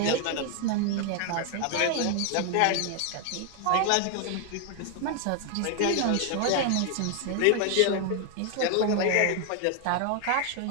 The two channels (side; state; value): both; different; correlation 0.00